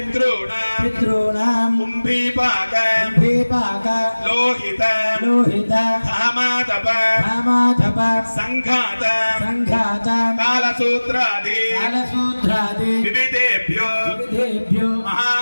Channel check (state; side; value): inverted; both; correlation -1.00